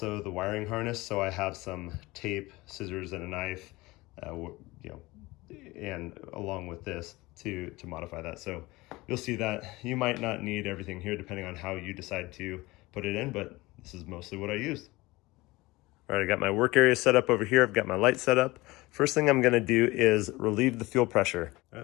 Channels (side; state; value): right; quieter; 21.0 dB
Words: the wiring harness, so I have some tape, scissors, and a knife, you know, and along with this to modify that. So you'll see that you might not need everything here depending on how you decide to put it in, but this is mostly what I used. All right, I got my work area set up over here. I've got my light set up. First thing I'm gonna do is relieve the fuel pressure. All